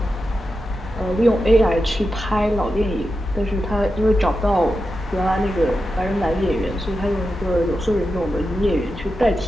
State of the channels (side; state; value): both; normal; correlation 0.90